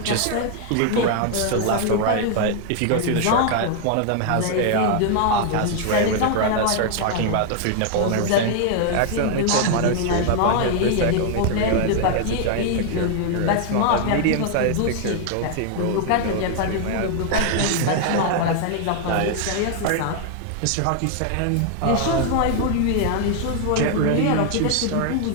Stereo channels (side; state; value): both; different; correlation 0.00